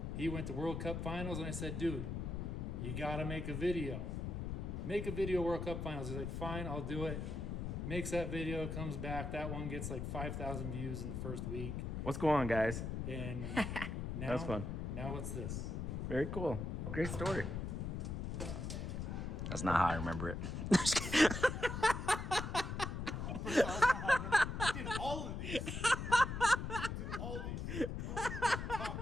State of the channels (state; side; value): noise; left; rumble, 4 dB below the sound